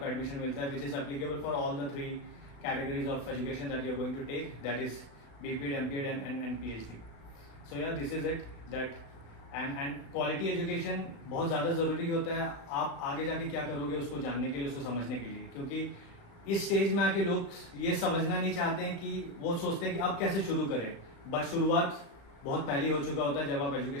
एडमिशन मिलता है, which is applicable for all the 3 categories of education that you are going to take, that is BPEd, MPEd and PhD. So yeah this is it that and quality education बहुत ज़्यादा ज़रूरी होता है आप आगे जाके क्या करोगे उसको जानने के लिए, उसको समझने के लिए, क्योंकि इस स्टेज में आके लोग ये समझना नहीं चाहते हैं कि वो सोचते हैं कि अब कैसे शुरू करें, बट शुरुआत बहुत पहले हो चुका होता है जब आप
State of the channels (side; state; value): right; late; 35 ms